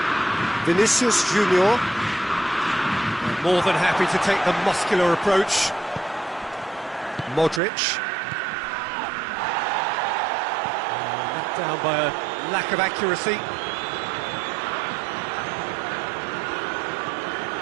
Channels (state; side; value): drops out; left; at 7.6 s